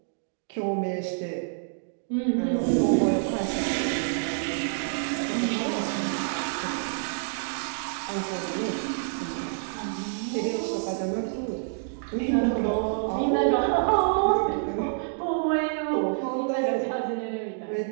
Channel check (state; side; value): silent; left; digital silence